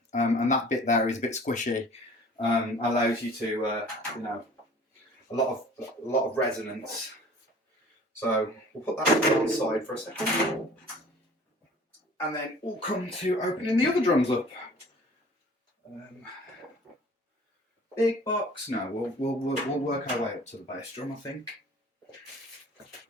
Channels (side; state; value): both; normal; correlation 0.48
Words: and that bit there is a bit squishy. Allows you to, you know, a lot of resonance. So we'll put that to one side for a second, and then we'll come to opening the other drums up. Big box. No, we'll work our way up to the bass drum, I think.